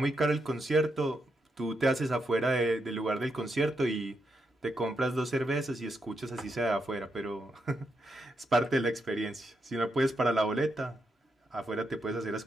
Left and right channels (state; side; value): normal; both; correlation 0.82